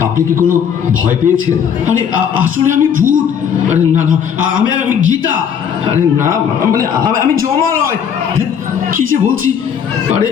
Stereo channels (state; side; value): quieter; right; 7.8 dB